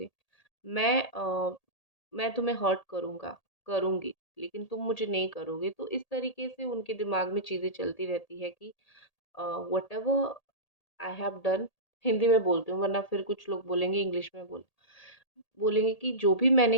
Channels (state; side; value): late; right; 1.8 ms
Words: मैं मैं तुम्हें हर्ट करूँगी, लेकिन तुम मुझे नहीं करोगे। तो इस तरीके से उनके दिमाग में चीज़ें चलती रहती है कि whatever I have done, Hindi में बोलती हूँ वरना फिर कुछ लोग बोलेंगे इंग्लिश में बोलेंगे कि जो भी